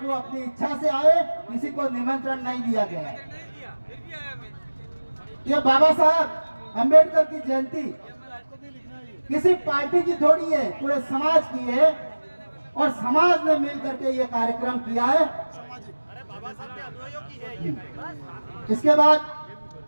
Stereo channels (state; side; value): inverted; both; correlation -1.00